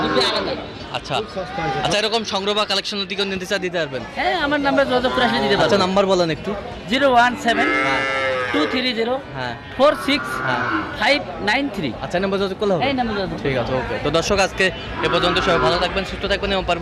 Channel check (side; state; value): both; identical; correlation 1.00